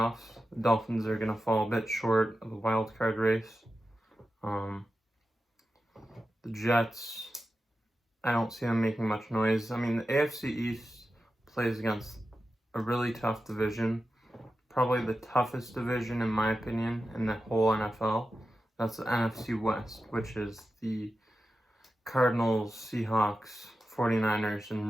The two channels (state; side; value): normal; both; correlation 0.92